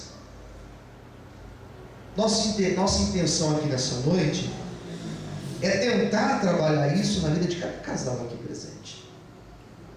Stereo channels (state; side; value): identical; both; correlation 1.00